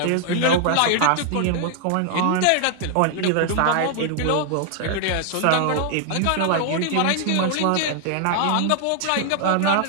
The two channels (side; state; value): both; different; correlation 0.00